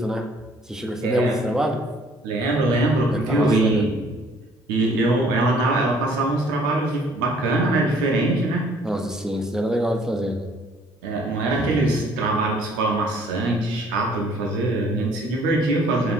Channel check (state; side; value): normal; both; correlation 0.58